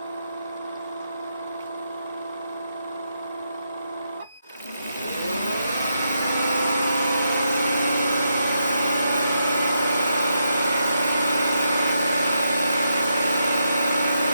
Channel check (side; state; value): both; inverted; correlation -0.81